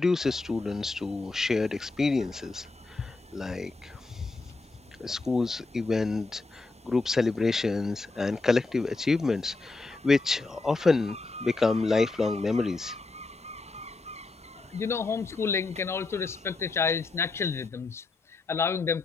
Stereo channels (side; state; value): right; quieter; 3.6 dB